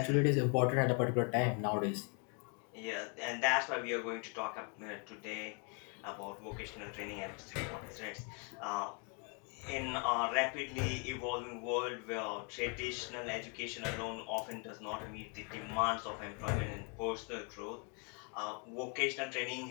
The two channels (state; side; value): quieter; right; 36.6 dB